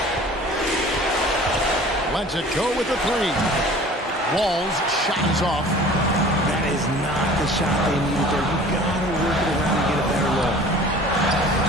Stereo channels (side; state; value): both; normal; correlation 0.46